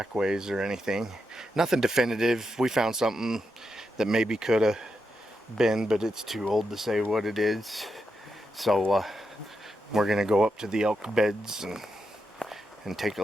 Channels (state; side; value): normal; both; correlation 0.85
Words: or anything. Nothing definitive. We found something that maybe could have been, but it's too old to say what it is. So we're gonna go up to the elk beds and take a